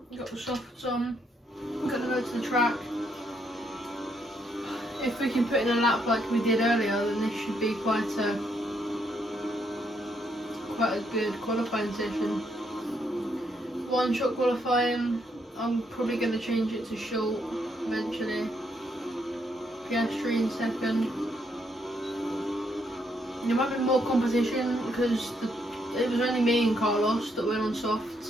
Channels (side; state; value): both; normal; correlation 0.75